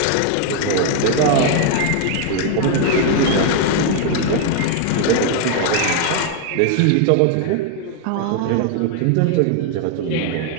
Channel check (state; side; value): different; both; correlation 0.00